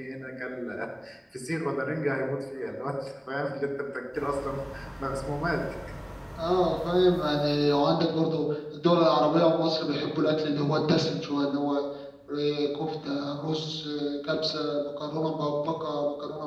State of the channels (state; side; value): identical; both; correlation 1.00